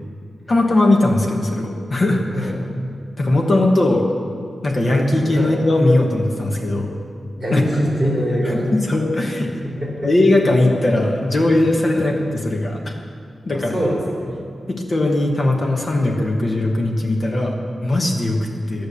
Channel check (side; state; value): both; normal; correlation 0.93